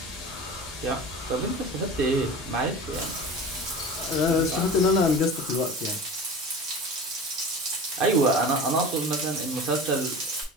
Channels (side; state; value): both; normal; correlation 0.34